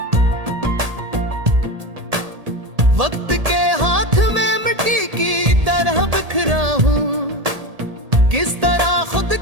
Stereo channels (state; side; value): late; left; 1.8 ms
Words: वक्त के हाथ में मिट्टी की तरह बिखरा हूँ, किस तरह खुद